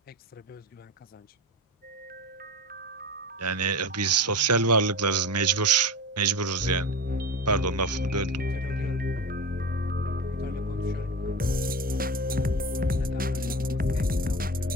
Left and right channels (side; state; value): both; normal; correlation 0.26